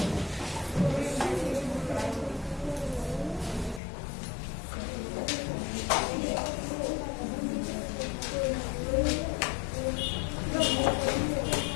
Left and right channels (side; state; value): right; drops out; at 3.8 s